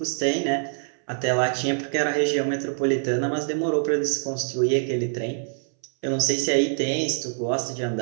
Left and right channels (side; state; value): left; silent; 61 dB below the other